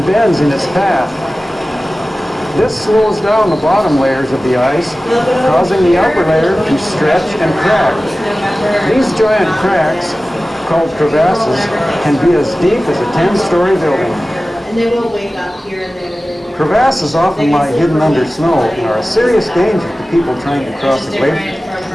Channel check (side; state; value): both; normal; correlation 0.96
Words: bends in its path. This slows down the bottom layers of the ice, causing the upper layer to stretch and crack. These giant cracks, called crevasses, can be as deep as a 10-story building. And they will wake up here and there. Crevasses often lie hidden under snow and are a serious danger to people trying to cross the glacier.